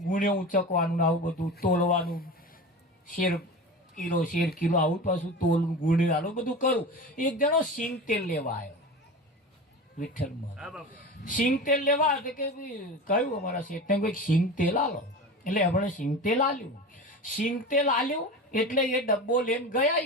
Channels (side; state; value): both; normal; correlation 0.30